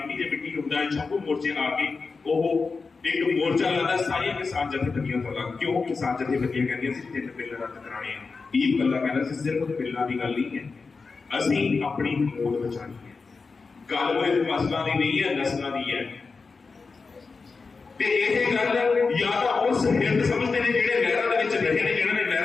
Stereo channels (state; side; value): quieter; right; 4.5 dB